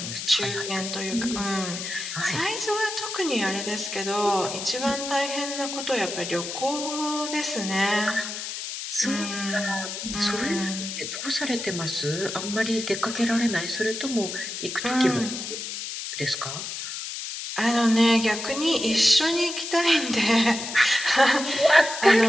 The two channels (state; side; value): noise; left; hiss, 6 dB below the sound